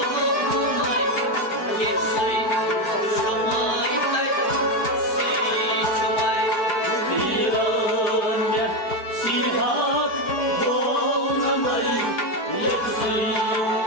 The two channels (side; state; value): right; late; 4.7 ms